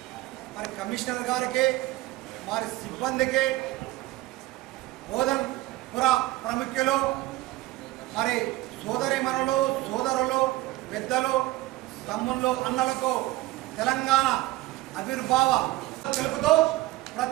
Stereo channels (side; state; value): left; quieter; 18.1 dB